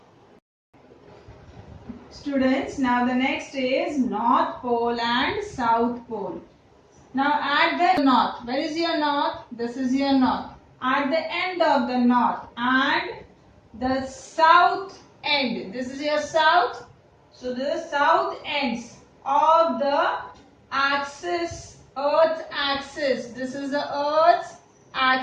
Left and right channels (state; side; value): identical; both; correlation 1.00